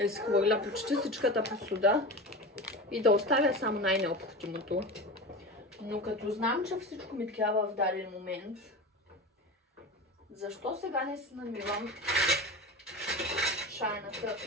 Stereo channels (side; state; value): both; normal; correlation 0.29